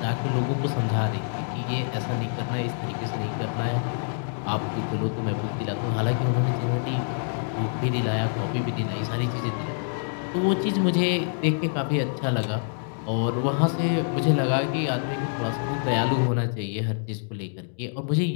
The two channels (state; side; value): silent; right; digital silence